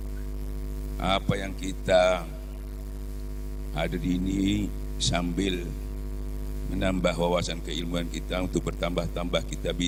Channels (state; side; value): identical; both; correlation 1.00